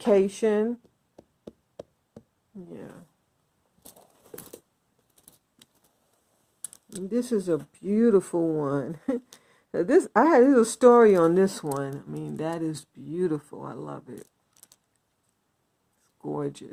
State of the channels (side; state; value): both; identical; correlation 1.00